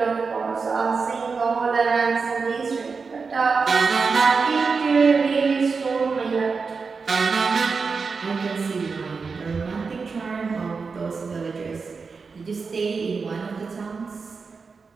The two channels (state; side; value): quieter; left; 4.9 dB